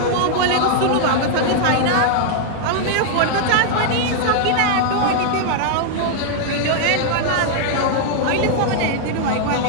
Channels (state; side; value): different; both; correlation -0.01